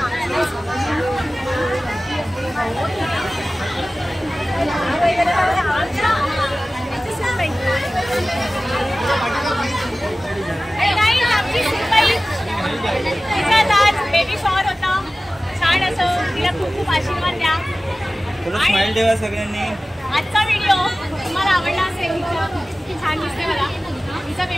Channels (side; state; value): both; normal; correlation 0.97